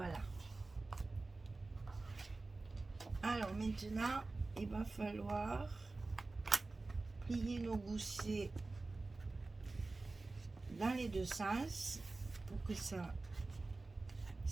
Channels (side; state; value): left; quieter; 3.4 dB